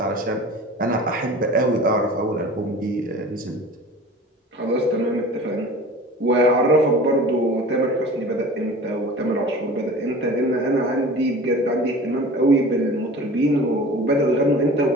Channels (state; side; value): normal; both; correlation 0.40